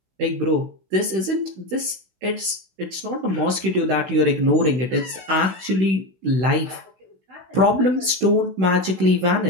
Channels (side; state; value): left; late; 16 ms